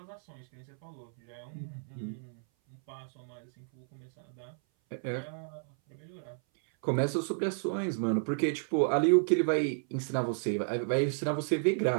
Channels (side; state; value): left; silent; 56 dB below the other